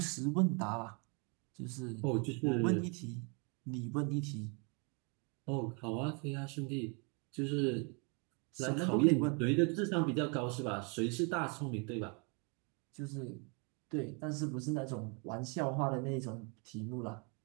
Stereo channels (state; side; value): quieter; left; 34.9 dB